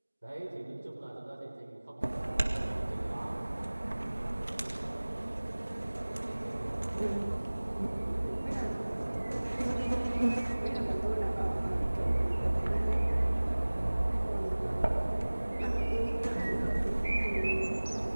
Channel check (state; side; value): inverted; both; correlation -1.00